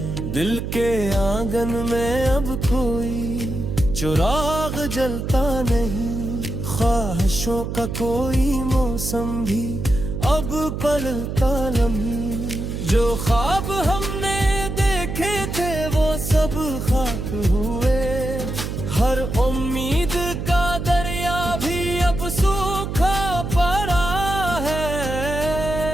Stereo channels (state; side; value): noise; right; hum, 4 dB below the sound